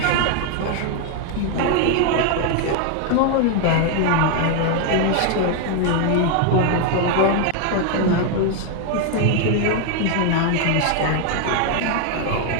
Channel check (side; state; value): both; different; correlation 0.01